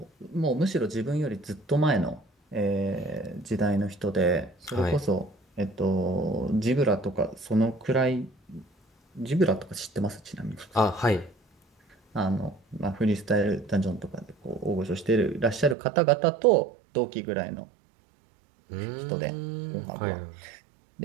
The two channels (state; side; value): drops out; left; at 15.8 s